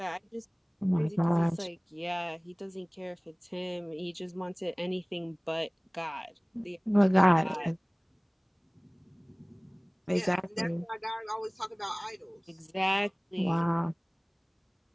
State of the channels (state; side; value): identical; both; correlation 1.00